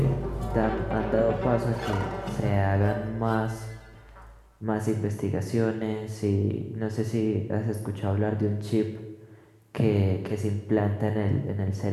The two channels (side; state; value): both; identical; correlation 1.00